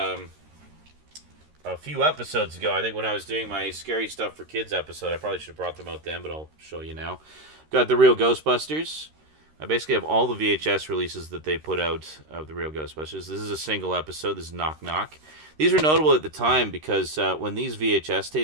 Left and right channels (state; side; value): late; left; 13 ms